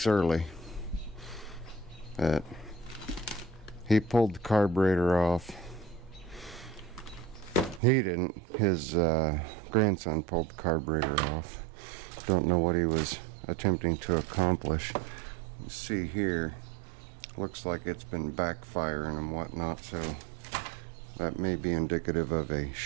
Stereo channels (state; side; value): drops out; left; at 7.8 s